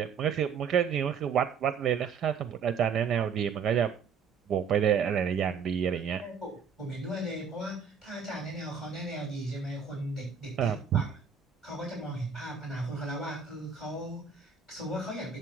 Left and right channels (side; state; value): left; quieter; 6.5 dB